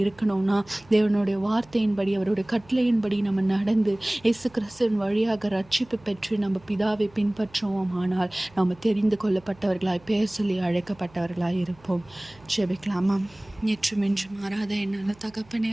இருக்கணும்னா தேவனுடைய வார்த்தையின்படி அவருடைய கட்டளையின்படி நம்ம நடந்து இயேசு கிறிஸ்துவின் வழியாக ரட்சிப்பு பெற்று நம்ம பிதாவை பின்பற்றுவோம். ஆனால் நம்ம தெரிந்து கொள்ளப்பட்டவர்களாய் பெயர் சொல்லி அழைக்கப்பட்டவர்களாய் இருப்போம். ஜெபிக்கலாமா? நேற்றும் இன்று மாறாத என்னால் தகப்பனே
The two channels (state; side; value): noise; right; hum, 26 dB below the sound